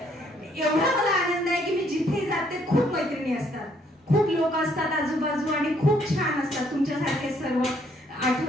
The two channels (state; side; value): normal; both; correlation 0.67